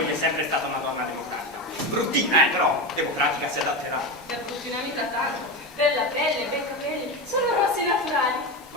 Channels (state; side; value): normal; both; correlation 0.19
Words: è sempre stata una donna democratica. Bruttina, però democratica si adatterà. Per bruttina mica tanto. Bella pelle, bei capelli, sono rossi naturali.